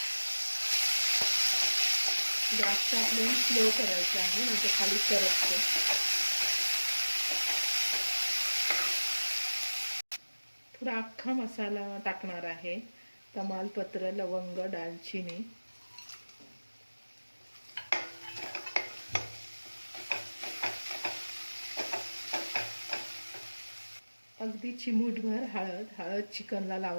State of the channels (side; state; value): both; inverted; correlation -1.00